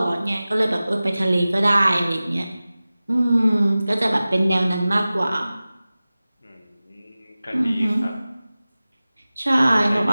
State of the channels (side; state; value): both; inverted; correlation -0.97